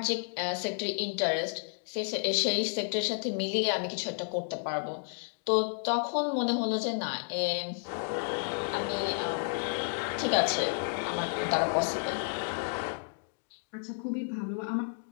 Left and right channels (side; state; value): right; silent; digital silence